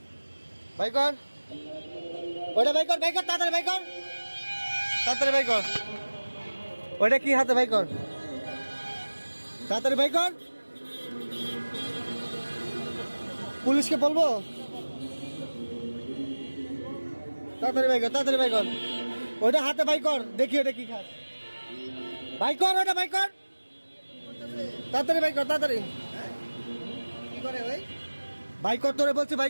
বাই কর, ওটা বাই কর, বাই কর, তাড়াতাড়ি বাই কর, তাড়াতাড়ি বাই কর। ওটা কি হাতে? বাই কর, তাড়াতাড়ি বাই কর। পুলিশকে বলবো? তাড়াতাড়ি বাই কর, তাড়াতাড়ি বাই কর। ওটা হাতে বাই কর, দেখি ওটা কি খাস। বাই কর, ওটা বাই কর, তাড়াতাড়ি বাই কর, তাড়াতাড়ি। কি করে ভাই? বাই কর, তোরে বলছি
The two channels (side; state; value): both; inverted; correlation -1.00